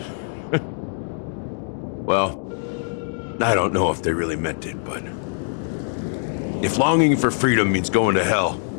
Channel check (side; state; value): right; silent; digital silence